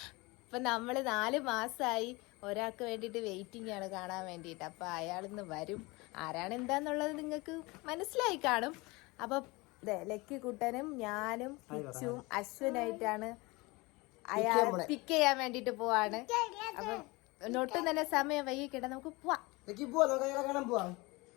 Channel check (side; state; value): right; quieter; 24.2 dB